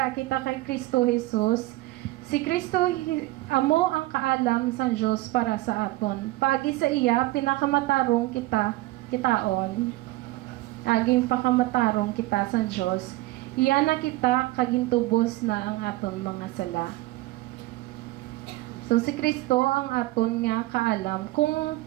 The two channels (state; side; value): quieter; left; 18.8 dB